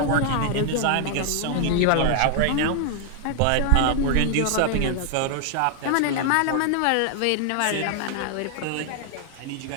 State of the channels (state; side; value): different; both; correlation 0.00